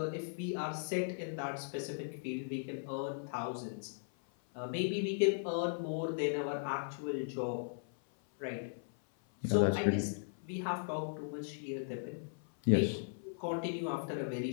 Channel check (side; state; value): right; silent; 53 dB below the other